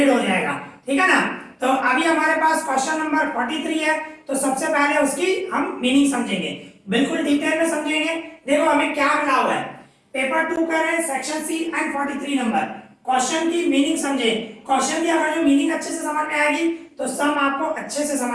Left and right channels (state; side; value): identical; both; correlation 1.00